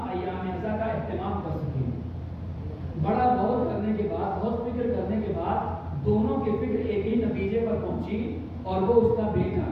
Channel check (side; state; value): both; identical; correlation 1.00